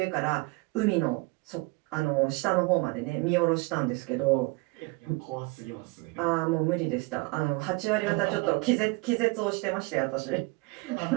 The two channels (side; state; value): left; quieter; 25.3 dB